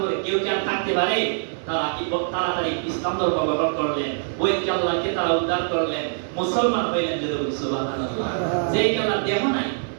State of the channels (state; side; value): silent; left; 63 dB below the other